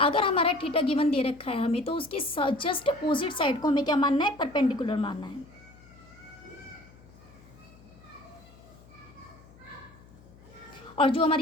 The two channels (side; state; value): left; noise; hum, 24 dB below the sound